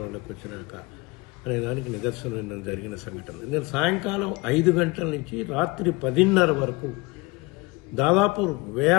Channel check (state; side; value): quieter; right; 24.6 dB